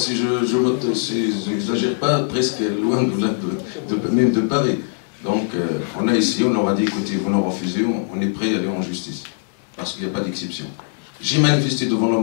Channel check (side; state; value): right; silent; digital silence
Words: je n'exagère pas, presque loin même de Paris. Donc, on a essayé, on leur a dit, écoutez, vous nous refusez, on est prêt à aller en justice. Parce qu'il n'y a pas d'exception. J'ai manifesté devant